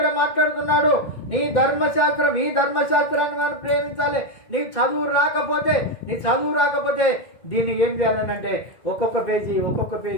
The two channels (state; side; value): late; right; 2.2 ms